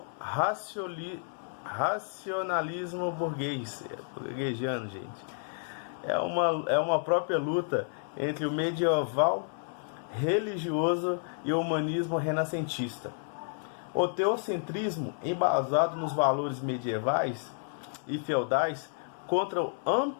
racionalismo burguesiano, gente. É uma própria luta entre o medieval religioso e o humanismo renascentista. O teocentrismo, embasado nos valores medievais e feudais, contra o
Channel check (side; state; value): right; silent; 57 dB below the other